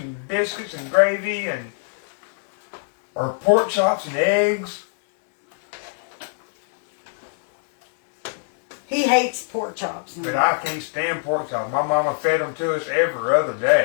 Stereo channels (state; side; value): silent; right; digital silence